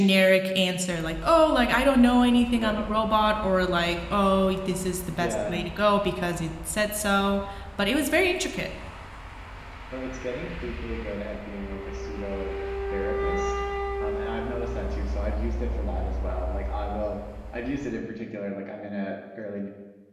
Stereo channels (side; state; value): both; identical; correlation 1.00